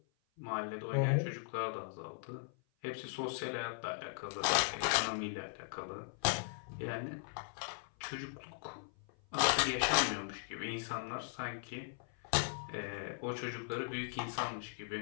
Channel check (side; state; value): right; silent; 52 dB below the other